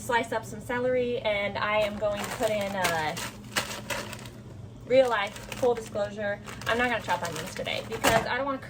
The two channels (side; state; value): both; identical; correlation 1.00